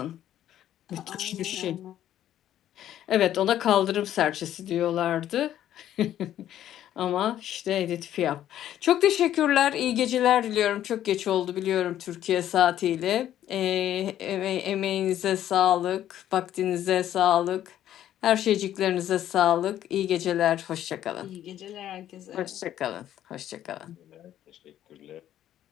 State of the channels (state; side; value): quieter; right; 11.7 dB